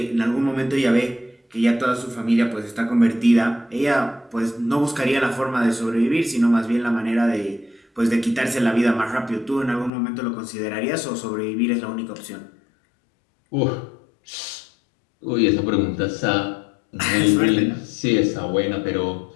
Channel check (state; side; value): drops out; right; at 9.9 s